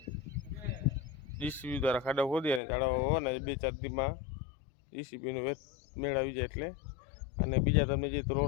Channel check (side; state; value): right; drops out; at 2.6 s